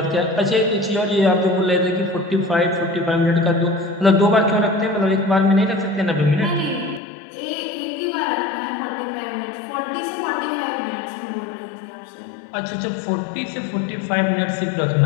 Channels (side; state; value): right; drops out; at 7.0 s